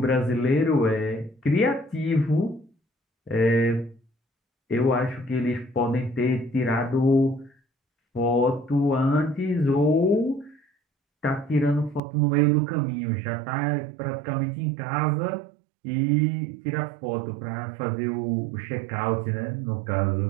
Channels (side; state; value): left; drops out; at 12.0 s